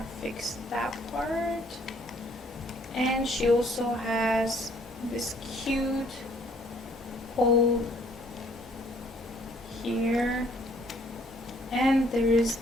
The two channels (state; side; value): normal; both; correlation 0.62